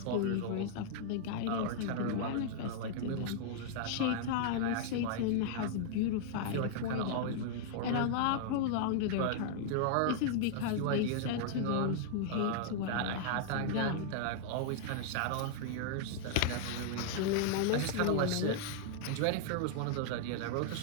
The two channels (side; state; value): both; different; correlation -0.01